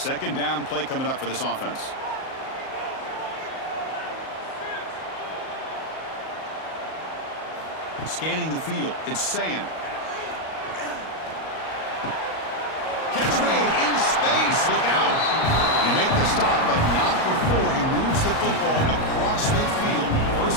2nd down play coming up for this offense. Scanning the field. It's saying. Catch made in space. Look out. They make the stop, but not before he moves the football across midfield.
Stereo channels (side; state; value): right; late; 38 ms